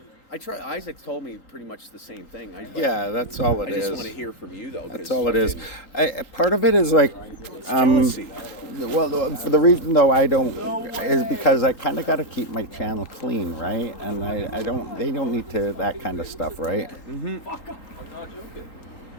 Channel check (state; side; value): late; right; 3.8 ms